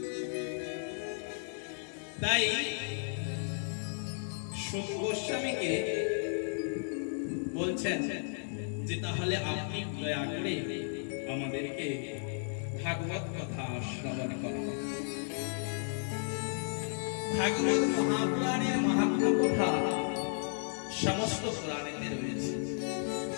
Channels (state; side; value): silent; right; 55 dB below the other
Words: তাই সুত গোস্বামীকে বলছেন যে তাহলে আপনি দয়া করে আমাদেরকে ভাগবত কথা শ্রবণ করুন। ভাগবত মহাপুরাণের মাহাত্ম্য কথা সমস্ত পুরাণেতে রয়েছে।